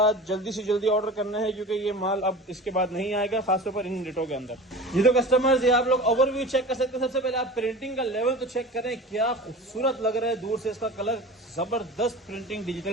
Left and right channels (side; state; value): both; normal; correlation 0.36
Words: जल्दी से जल्दी ऑर्डर करना है क्योंकि ये माल अब इसके बाद नहीं आएगा, खासतौर पर इन रेटों के अंदर। ये तो कस्टमर्स, ये आप लोग ओवरव्यू चेक कर सकते हैं। सबसे पहले आप प्रिंटिंग का लेवल तो चेक करें, क्या खूबसूरत लग रहा है दूर से। इसका कलर जबरदस्त प्रिंटिंग,